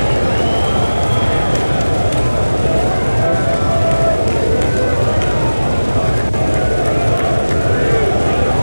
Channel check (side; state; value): both; inverted; correlation -1.00